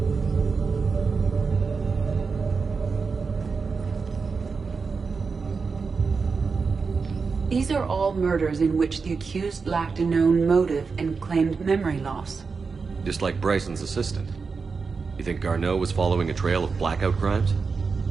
These are all murders in which the accused lacked a known motive and claimed memory loss. Just like Bryson's assistant. You think Garneau was following a trail of blackout crimes?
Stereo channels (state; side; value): quieter; left; 4.9 dB